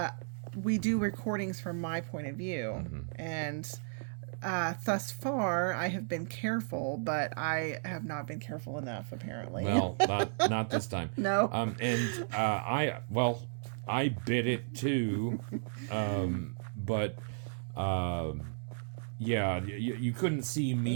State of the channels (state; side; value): silent; left; 55 dB below the other